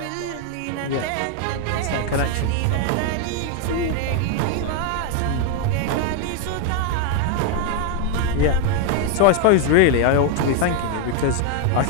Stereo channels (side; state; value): both; different; correlation 0.01